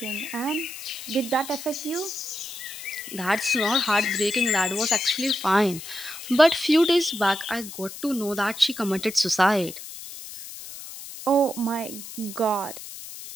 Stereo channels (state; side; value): noise; left; hiss, 12 dB below the sound